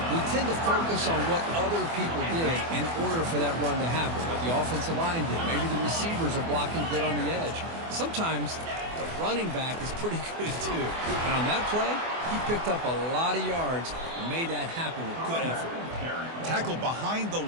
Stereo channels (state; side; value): late; left; 24 ms